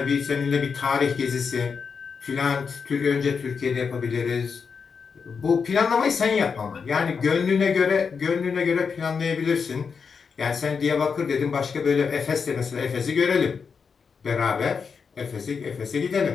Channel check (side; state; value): right; quieter; 5.8 dB